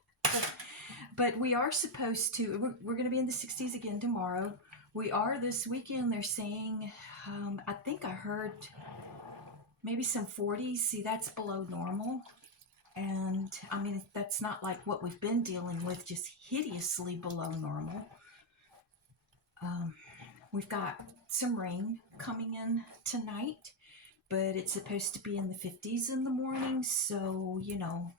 But we are supposed to, we're going to be in the 60s again tomorrow. We are this weekend, they're saying, I think I heard maybe some 40s. See, that's below normal. And I mean, that's not like what we've been dealing with, just hideously below normal. We've got some rain coming in tonight, but it's supposed to be in the 50s in the morning. So, you know,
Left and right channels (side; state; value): both; normal; correlation 0.03